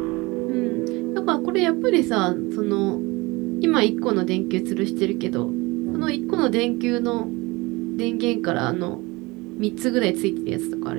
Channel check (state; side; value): quieter; left; 23.7 dB